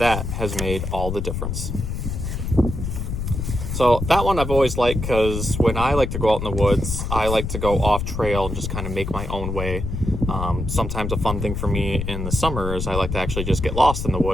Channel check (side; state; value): left; noise; rumble, 4 dB below the sound